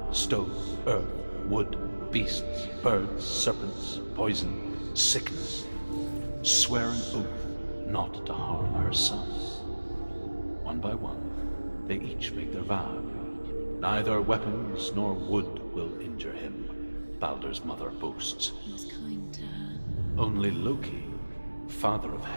stone, earth, wood, beasts, birds, serpents, poison, sickness, swear an oath not to harm her son. One by one, they each make their vow. Neither weapons nor wood will injure him, Baldur's mother boasts. He was kind to her. Only Loki, father of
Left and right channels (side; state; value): both; inverted; correlation -1.00